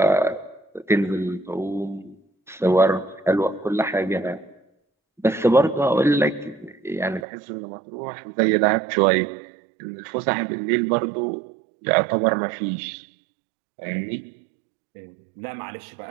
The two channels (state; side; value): drops out; left; at 7.2 s